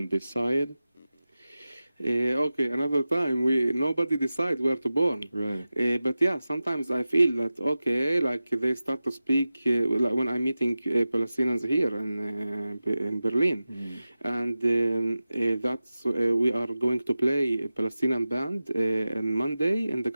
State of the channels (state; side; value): inverted; both; correlation -0.95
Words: this side. Okay, another time nobody decides where to born. Right. But yeah, sometimes I feel that okay, like they start to speak like when I'm meeting Palestinians here in Berlin, and that's we are going to play a Palestinian band on Monday in the